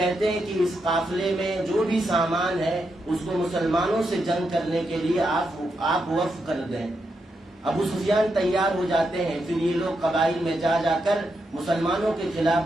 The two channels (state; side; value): normal; both; correlation 0.83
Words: ہیں کہ اس قافلے میں جو بھی سامان ہے اس کو مسلمانوں سے جنگ کرنے کے لیے آپ وقف کر دیں۔ ابو سفیان تیار ہو جاتے ہیں۔ پھر یہ لوگ قبائل میں جا کر مسلمانوں کے